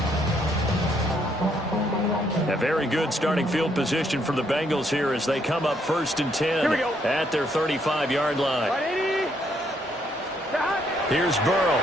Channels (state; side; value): normal; both; correlation 0.72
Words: A very good starting field position for the Bengals here as they come up 1st and 10 at their 35-yard line. Here's Burrow.